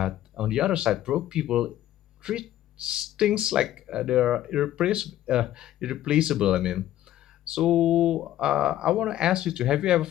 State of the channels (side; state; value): right; quieter; 13.0 dB